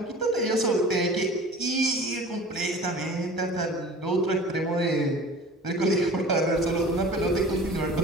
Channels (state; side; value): normal; both; correlation 0.41